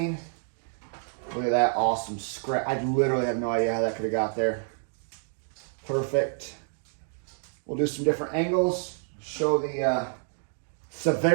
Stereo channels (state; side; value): silent; left; digital silence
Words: Look at that awesome scratch. I literally have no idea how that could have got there. Perfect. We'll do some different angles, show the